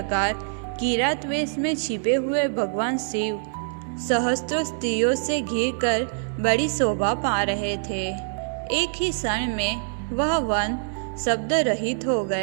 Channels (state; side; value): silent; left; 62 dB below the other